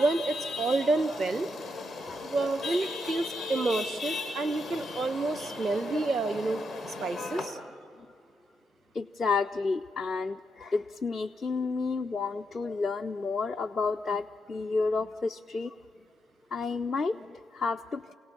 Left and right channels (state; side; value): normal; both; correlation 0.82